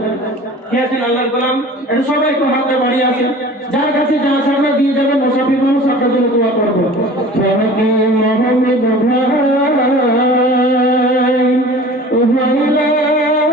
কে আছেন আল্লাহর গোলাম? এটা সবাই একটু হাতে বাড়িয়ে আসেন। যার কাছে যা আছে আপনারা দিয়ে যাবেন। মুসাফির মানুষ আপনার জন্য দোয়া করবো। মোহাম্মদ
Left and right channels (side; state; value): both; normal; correlation 0.42